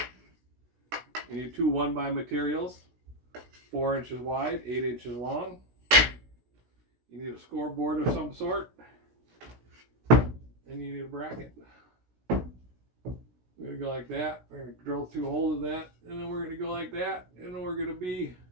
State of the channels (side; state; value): left; late; 16 ms